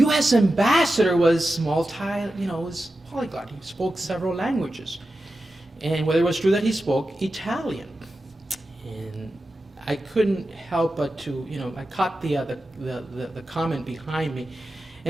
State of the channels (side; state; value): both; normal; correlation 0.92